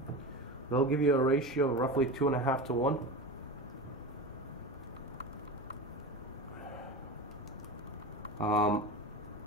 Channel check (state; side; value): normal; both; correlation 0.26